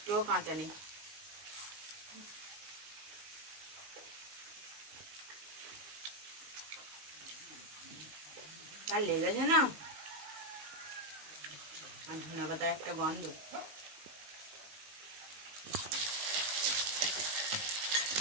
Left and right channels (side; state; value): left; late; 19 ms